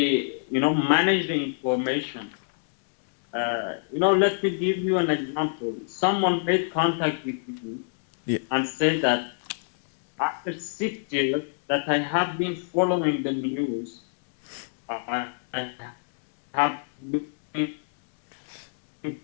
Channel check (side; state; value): right; silent; digital silence